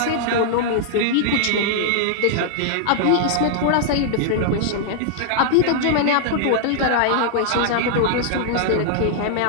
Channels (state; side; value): different; both; correlation -0.01